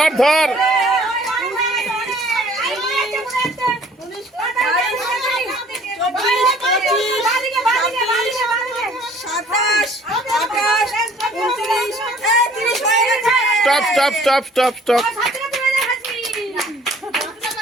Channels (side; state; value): both; normal; correlation 0.54